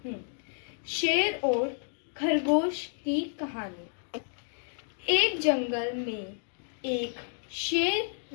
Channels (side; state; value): right; silent; 56 dB below the other